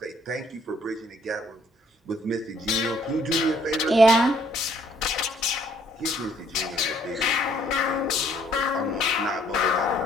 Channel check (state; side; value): normal; both; correlation 0.64